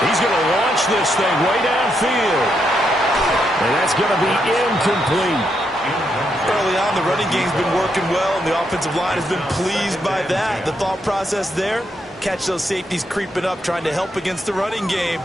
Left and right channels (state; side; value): normal; both; correlation 0.79